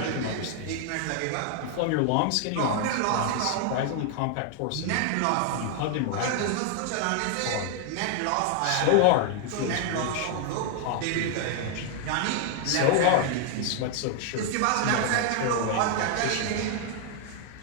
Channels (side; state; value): both; different; correlation 0.00